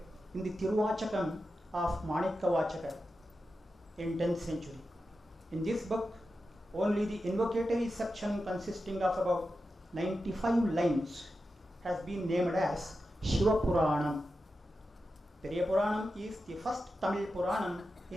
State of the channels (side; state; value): both; normal; correlation 0.91